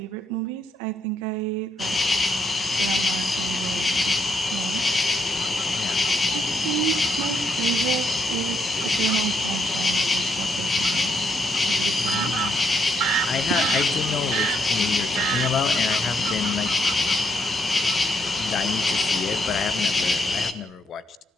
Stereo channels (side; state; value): both; normal; correlation 0.75